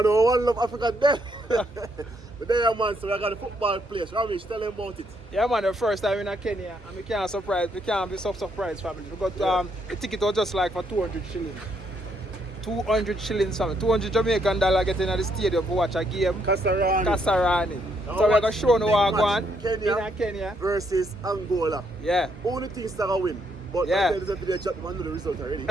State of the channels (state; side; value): normal; both; correlation 0.73